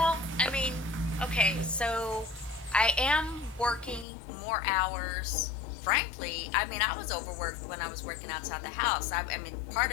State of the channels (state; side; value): drops out; right; at 4.0 s